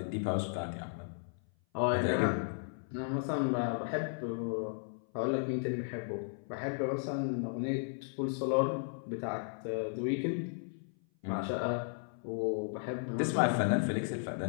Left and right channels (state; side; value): silent; right; 54 dB below the other